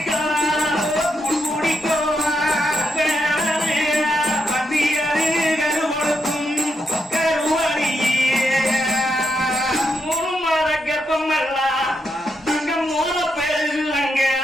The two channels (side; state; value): both; normal; correlation 0.82